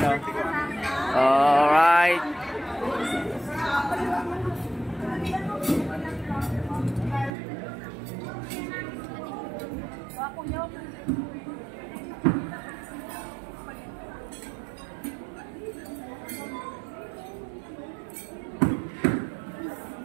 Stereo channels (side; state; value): left; drops out; at 7.3 s